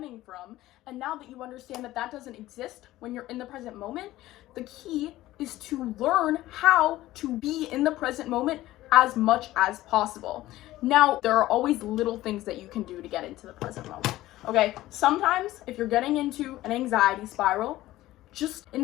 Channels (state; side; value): quieter; right; 16.0 dB